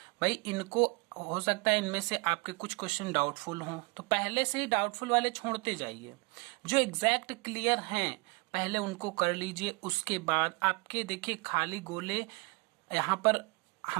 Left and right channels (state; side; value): quieter; left; 29.1 dB